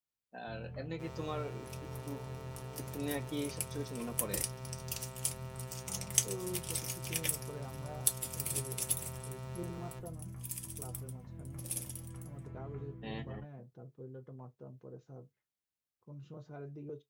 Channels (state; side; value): identical; both; correlation 1.00